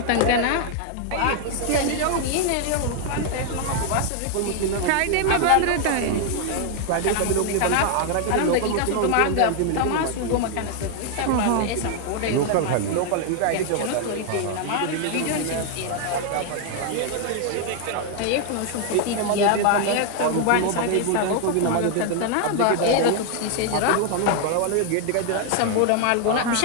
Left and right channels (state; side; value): different; both; correlation 0.00